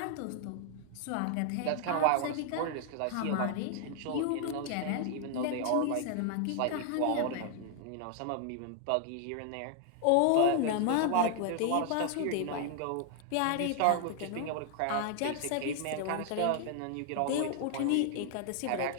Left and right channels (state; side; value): different; both; correlation 0.00